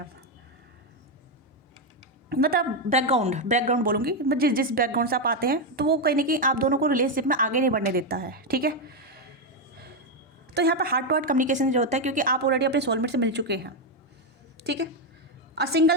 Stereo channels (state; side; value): normal; both; correlation 0.05